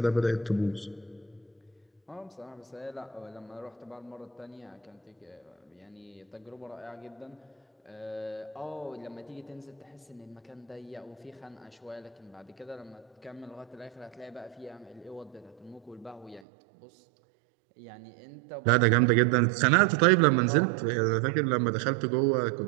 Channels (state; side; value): drops out; left; at 16.4 s